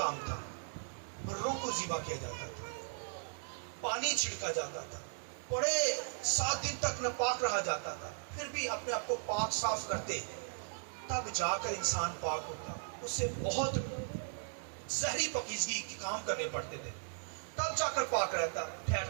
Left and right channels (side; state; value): left; silent; digital silence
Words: تھا. بھروں کو ذبح کیا جاتا تھا, پانی چھڑکا جاتا تھا, بڑے 7 دن تک ناپاک رہا جاتا تھا, پھر بھی اپنے آپ کو پاک صاف کرتے تب جا کر انسان پاک ہوتا. اس سے بہت زہری پاکیزگی کے کام کرنے پڑتے تھے تب جا کر پاک